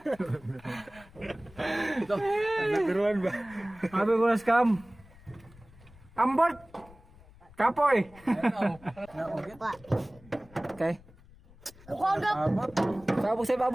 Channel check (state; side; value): noise; left; rumble, 24 dB below the sound